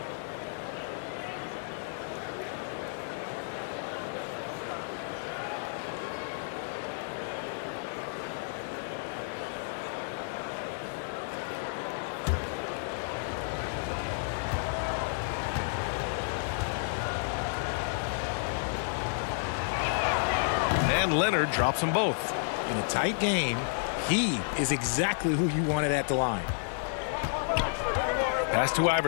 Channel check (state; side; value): silent; right; digital silence